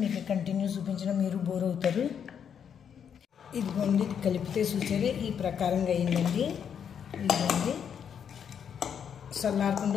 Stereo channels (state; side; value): quieter; right; 7.9 dB